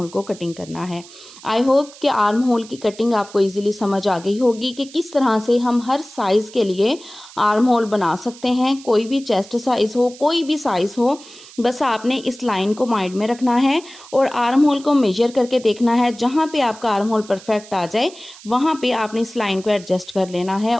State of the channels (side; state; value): right; noise; hiss, 20 dB below the sound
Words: को कटिंग करना है। आई होप कि आर्म होल की कटिंग आपको इजीली समझ आ गई होगी कि किस तरह से हम हर साइज़ के लिए आर्म होल बना सकते हैं। कोई भी चेस्ट साइज़ हो, कोई भी साइज़ हो, बस आपने इस लाइन को माइंड में रखना है और आर्म होल को मेजर करके देखना है। जहाँ पे आपका आर्म होल परफेक्ट आ जाए वहाँ पे आपने इस लाइन को एडजस्ट कर लेना है